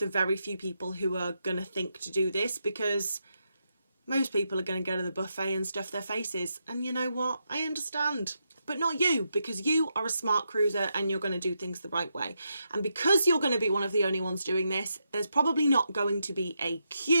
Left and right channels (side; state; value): both; inverted; correlation -0.83